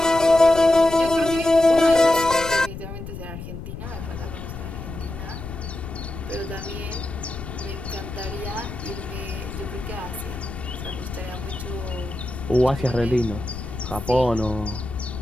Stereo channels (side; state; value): left; noise; rumble, 10 dB below the sound